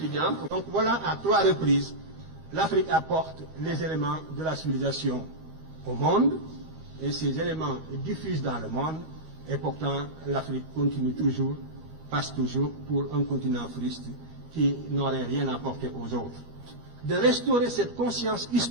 Donc voilà, à 3 reprises, l'Afrique apporte les éléments de la civilisation au monde, et ces éléments diffusent dans le monde, et pourtant l'Afrique continue toujours, passe toujours pour un continent fruste qui n'aurait rien apporté aux autres. De restaurer cette conscience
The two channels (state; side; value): late; left; 13 ms